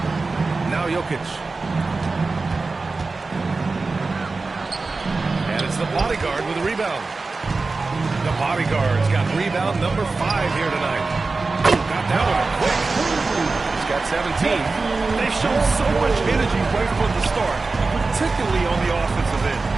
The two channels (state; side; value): quieter; left; 3.8 dB